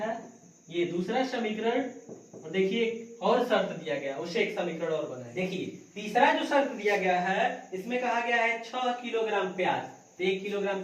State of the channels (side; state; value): both; identical; correlation 1.00